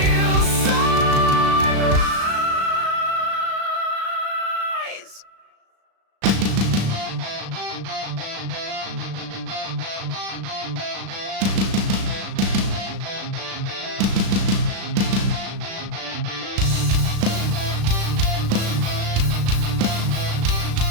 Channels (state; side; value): late; left; 36 ms